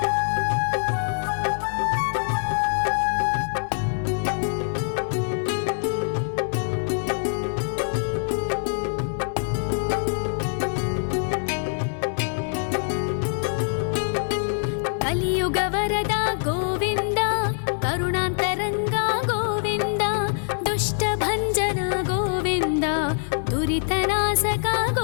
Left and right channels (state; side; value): silent; right; digital silence